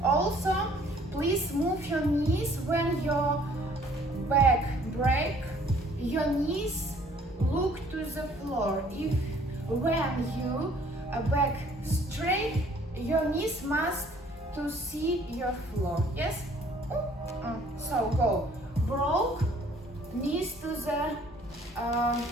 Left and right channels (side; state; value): both; normal; correlation 0.58